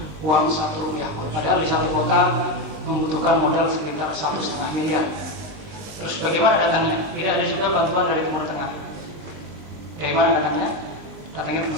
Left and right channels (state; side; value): late; left; 20 ms